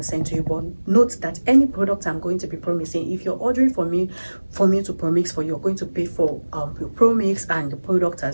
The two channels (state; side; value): inverted; both; correlation -1.00